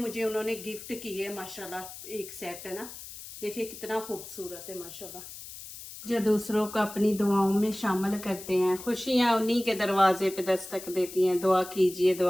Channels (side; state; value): left; noise; hiss, 13 dB below the sound